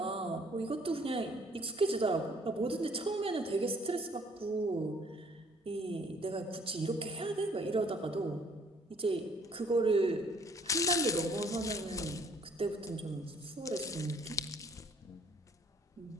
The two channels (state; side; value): normal; both; correlation 0.59